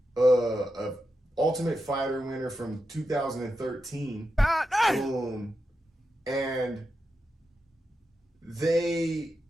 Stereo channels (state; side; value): normal; both; correlation 0.88